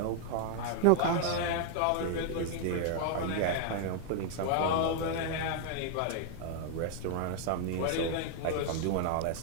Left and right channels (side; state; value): both; different; correlation 0.00